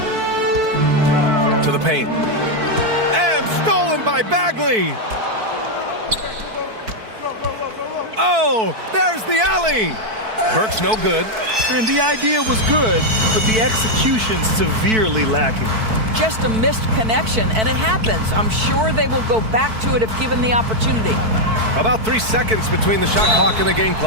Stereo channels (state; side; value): late; left; 4.5 ms